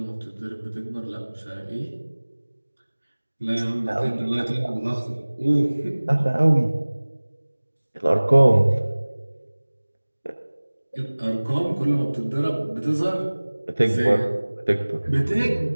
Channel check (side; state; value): both; inverted; correlation -1.00